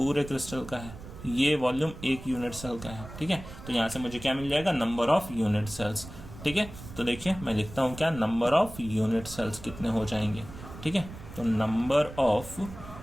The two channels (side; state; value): right; noise; rumble, 14 dB below the sound